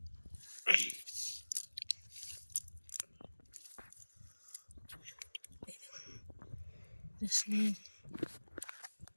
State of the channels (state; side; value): inverted; both; correlation -1.00